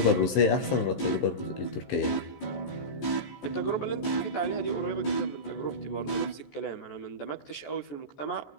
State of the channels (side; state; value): right; late; 15 ms